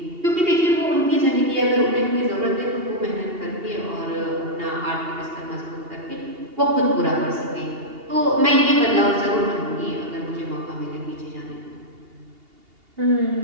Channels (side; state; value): left; late; 2.8 ms